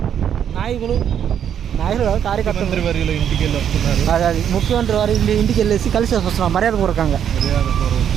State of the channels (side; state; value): left; quieter; 9.0 dB